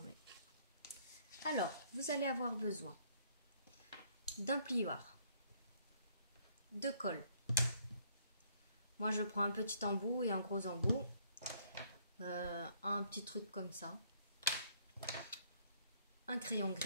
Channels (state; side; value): inverted; both; correlation -0.64